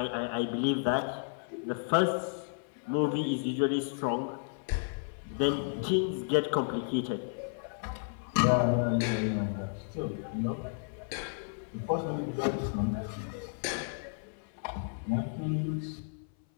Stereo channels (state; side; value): silent; right; 56 dB below the other